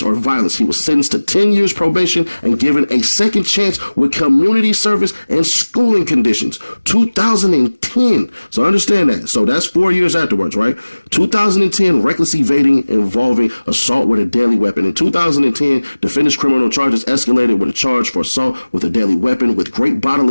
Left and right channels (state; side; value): inverted; both; correlation -1.00